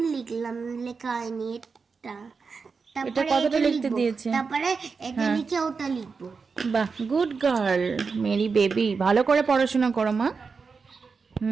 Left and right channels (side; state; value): left; quieter; 5.0 dB